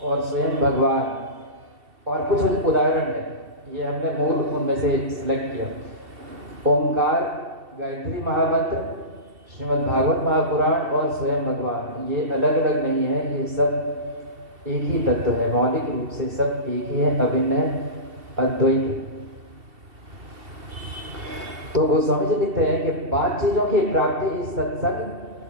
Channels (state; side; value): late; left; 2.7 ms